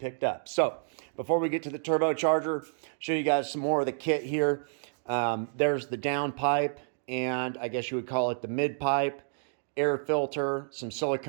up. So before we get to the turbocharger, show you guys some more of the kit here. There's the down pipe, and I guess you would call it the mid pipe, air filter, some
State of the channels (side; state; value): left; silent; digital silence